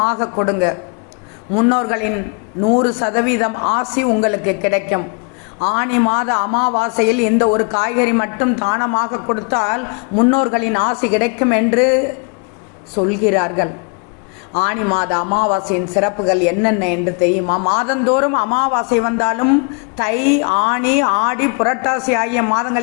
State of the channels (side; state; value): right; quieter; 37.2 dB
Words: கொடுங்க. முன்னோர்களின் 100% ஆசி உங்களுக்கு கிடைக்கும். ஆனி மாத அமாவாசையில் இந்த ஒரு காய்கறி மட்டும் தானமாக கொடுத்தால் முன்னோர்களின் ஆசி கிடைக்கும் என்று சொல்கிறார்கள். ஆனி மாத அமாவாசையின் சிறப்புகள் என்னென்ன என்று தெரியுமா? மாதந்தோறும் அமாவாசை வந்தாலும் தை, ஆனி, ஆடி, புரட்டாசி ஆகிய